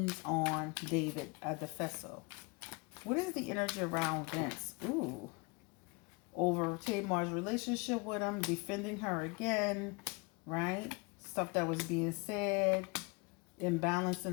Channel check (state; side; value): quieter; right; 29.1 dB